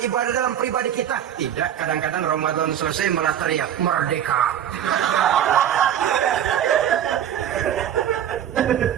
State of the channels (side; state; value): left; quieter; 10.0 dB